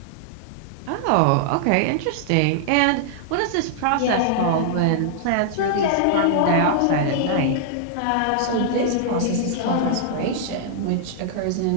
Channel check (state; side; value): different; both; correlation -0.01